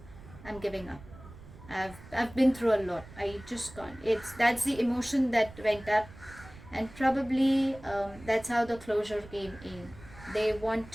I'm giving up. I've been through a lot. I just can't. That's the emotion that went up, and probably that's how the closure came in. They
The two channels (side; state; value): right; noise; rumble, 18 dB below the sound